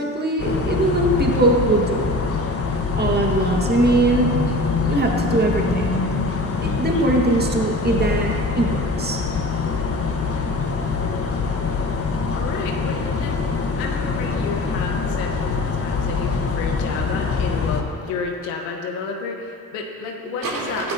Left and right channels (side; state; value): both; normal; correlation 0.39